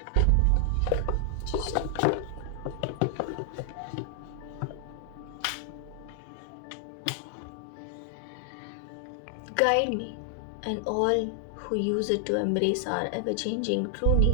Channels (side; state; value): both; different; correlation 0.00